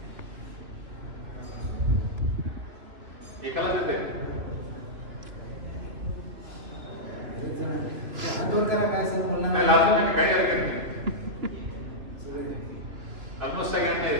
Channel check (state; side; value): late; left; 3.1 ms